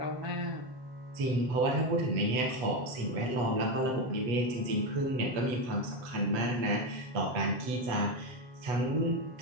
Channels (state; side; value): late; left; 8.2 ms